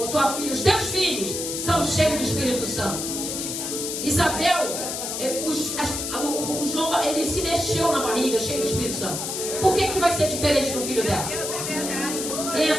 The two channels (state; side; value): noise; left; hiss, 4 dB below the sound